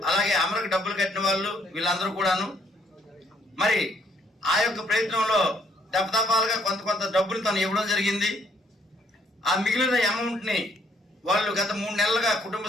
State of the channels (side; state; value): both; normal; correlation 0.67